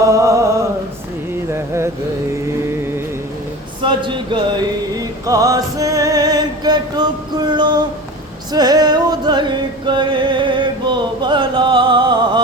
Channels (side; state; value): both; normal; correlation 0.34